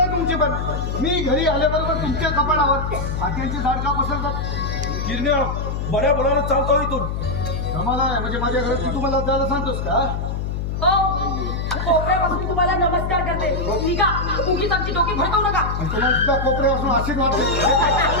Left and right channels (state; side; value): noise; left; hum, 2 dB below the sound